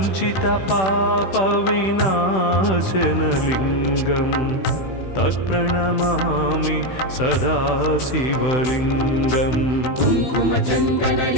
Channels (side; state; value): right; late; 16 ms